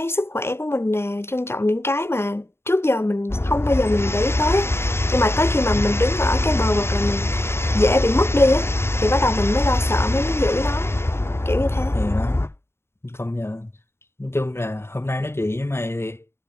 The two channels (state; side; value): late; right; 0.12 ms